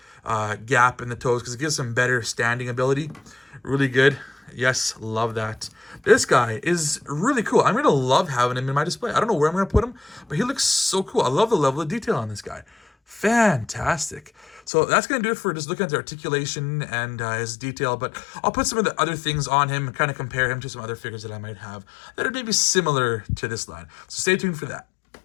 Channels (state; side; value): drops out; right; at 14.6 s